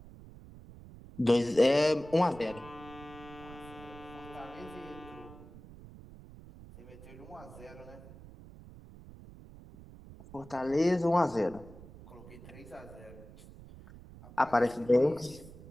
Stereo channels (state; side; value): noise; right; rumble, 18 dB below the sound